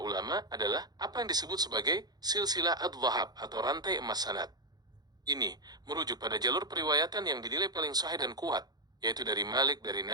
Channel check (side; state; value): left; late; 0.19 ms